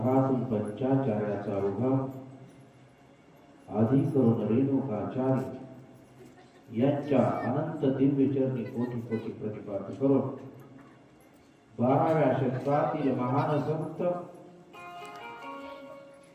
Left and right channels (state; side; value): identical; both; correlation 1.00